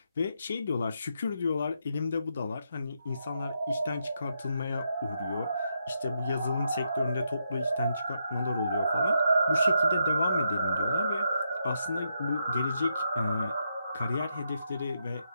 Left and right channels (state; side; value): inverted; both; correlation -0.81